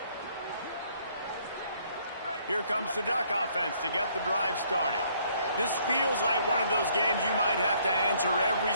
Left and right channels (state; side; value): inverted; both; correlation -0.65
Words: Here comes the Duck offense to get the drive started. This feels like one of those games you might have to answer every